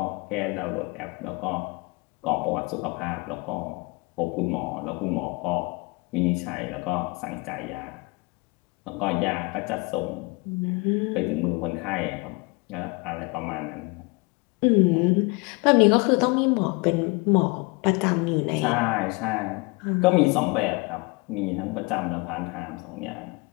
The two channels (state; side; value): quieter; right; 27.3 dB